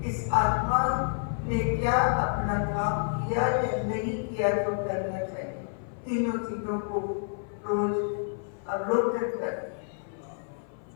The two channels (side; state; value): right; silent; 56 dB below the other